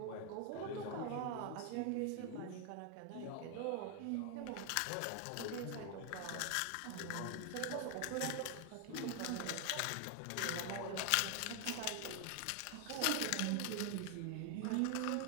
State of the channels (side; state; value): both; different; correlation 0.01